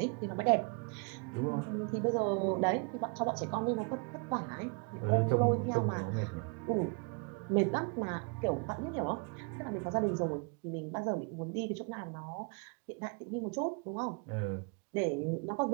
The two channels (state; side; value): quieter; left; 33.5 dB